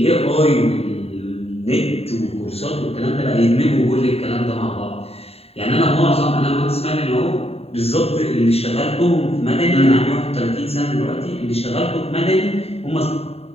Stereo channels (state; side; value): late; right; 0.29 ms